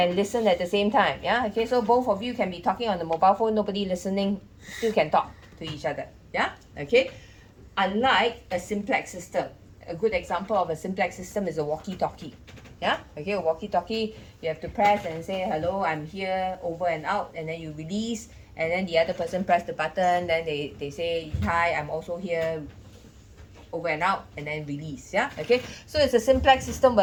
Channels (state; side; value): identical; both; correlation 1.00